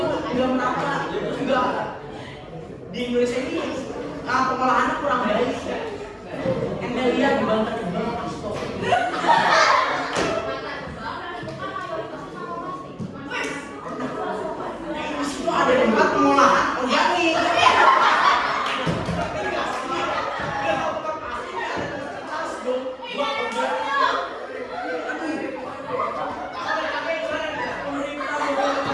merata. Enggak. Di Indonesia ini pengolahannya kurang baik. Anda lihat di Banten Astor. Di situ ada tempat pengolahan organik.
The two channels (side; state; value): both; identical; correlation 1.00